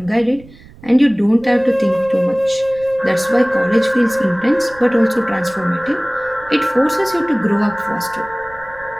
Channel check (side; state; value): right; noise; rumble, 22 dB below the sound